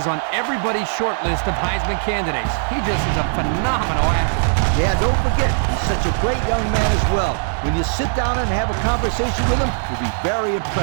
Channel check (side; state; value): left; silent; digital silence